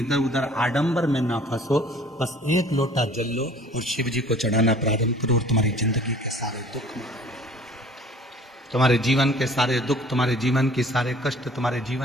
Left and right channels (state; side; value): normal; both; correlation 0.51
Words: उधर आडंबर में ना फंसो, बस एक लोटा जल लो और शिव जी को चढ़ाना प्रारंभ करो और तुम्हारी जिंदगी के सारे दुख, तुम्हारे जीवन के सारे दुख, तुम्हारे जीवन के सारे कष्ट, तुम्हारे